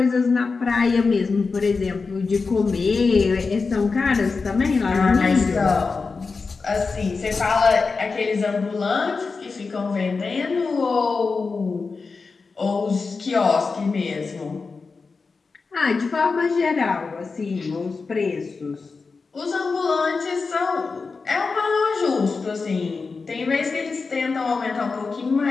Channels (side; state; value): right; quieter; 4.5 dB